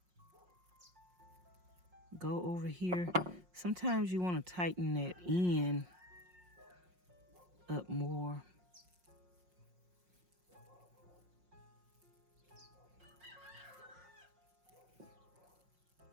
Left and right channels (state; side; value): late; left; 5.6 ms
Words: go over here. Sometimes you want to tighten that end up more.